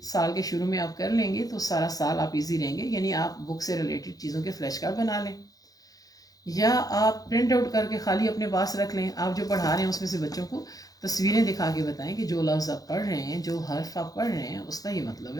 سال کے شروع میں آپ کر لیں گے تو سارا سال آپ ایزی رہیں گے. یعنی آپ بک سے ریلیٹڈ چیزوں کے فلیش کارڈ بنا لیں، یا آپ پرنٹ آؤٹ کر کے خالی اپنے پاس رکھ لیں. آپ جو پڑھا رہے ہیں اس میں سے بچوں کو تصویریں دکھا کے بتائیں کہ جو لفظ آپ پڑھ رہے ہیں، جو حرف آپ پڑھ رہے ہیں، اس کا یہ مطلب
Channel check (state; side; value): late; right; 0.18 ms